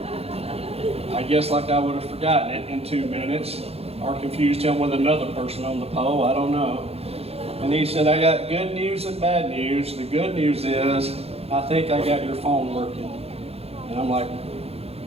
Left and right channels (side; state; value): left; late; 0.29 ms